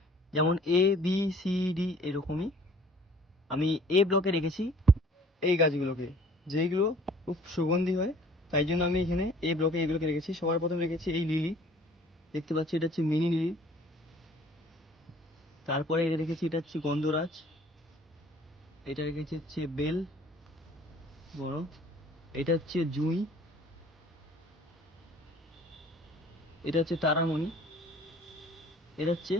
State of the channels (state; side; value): normal; both; correlation 0.54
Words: যেমন A B C D এরকমই। আমি এ ব্লকে রেখেছি এই গাছগুলোকে, যেইগুলো খুব সুগন্ধি হয়, তাই জন্য আমি এখানে এ ব্লকে এইগুলোকে রেখেছি। সবার প্রথম রেখেছি এই লিলি, দেখতে পাচ্ছি এটা হচ্ছে মিনি লিলি। তারপরে এটা রেখেছি, এটা হচ্ছে গন্ধরাজ। এটা রেখেছি হচ্ছে বেল বড়। এটা হচ্ছে জুঁই। এটা হচ্ছে তারামণি। এটা হচ্ছে